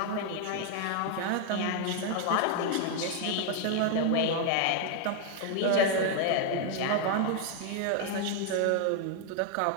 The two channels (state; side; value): different; both; correlation 0.00